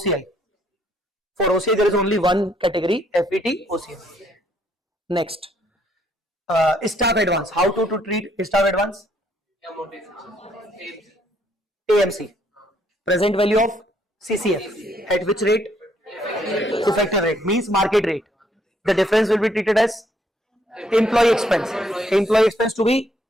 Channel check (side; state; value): both; normal; correlation 0.69